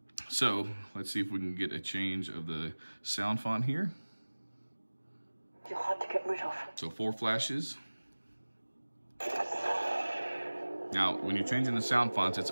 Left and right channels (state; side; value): inverted; both; correlation -1.00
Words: So let's see if we can get a change of the sound font here. You're hard to get rid of. So 4 flashes. Now, when you're changing the sound fonts, it's